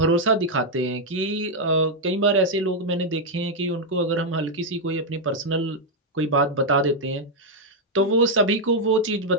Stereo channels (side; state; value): both; normal; correlation 0.00